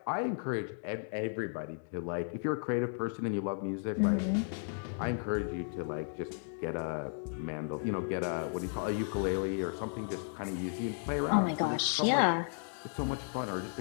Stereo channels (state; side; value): silent; right; digital silence